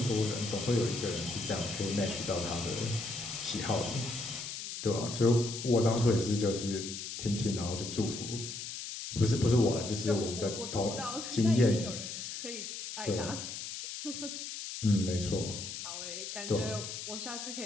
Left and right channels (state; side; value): noise; left; hiss, 7 dB below the sound